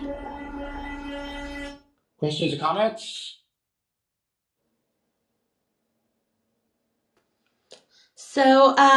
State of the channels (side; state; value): both; identical; correlation 1.00